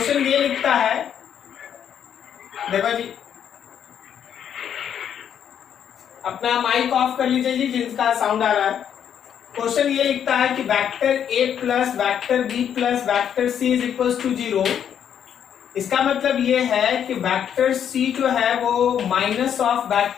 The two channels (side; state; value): right; quieter; 8.9 dB